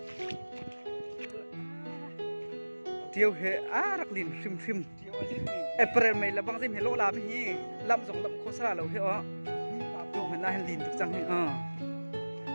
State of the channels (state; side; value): inverted; both; correlation -1.00